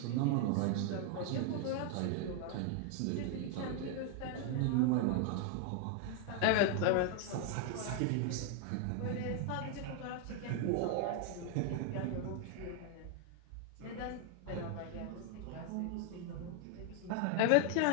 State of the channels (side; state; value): both; different; correlation 0.00